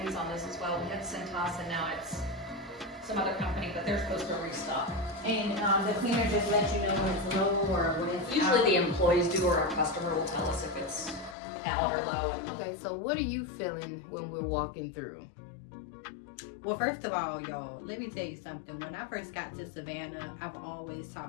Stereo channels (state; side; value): drops out; right; at 11.4 s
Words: on this as well. We had Cintas and now it's some other company, but they're supposed to restock. And the cleaner just lets you know when it's low or when it's Usually out. the employees do, or our customer will tell us if it's out or low. Okay, so what are you feeling when we're walking through? Well, first of all, y'all, let me tell you something. When I first got to Savannah, I've always